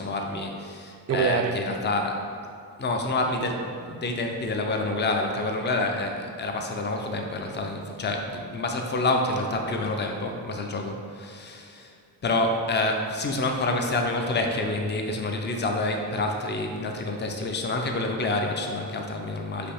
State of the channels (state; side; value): normal; both; correlation 0.03